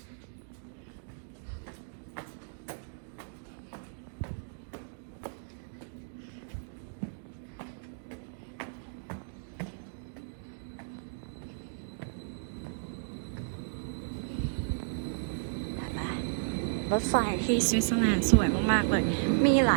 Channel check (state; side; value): silent; left; digital silence